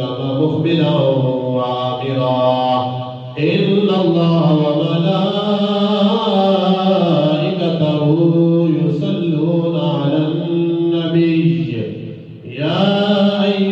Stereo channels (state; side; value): identical; both; correlation 1.00